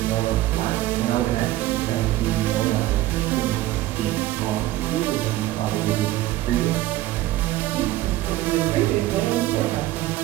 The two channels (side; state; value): left; quieter; 15.7 dB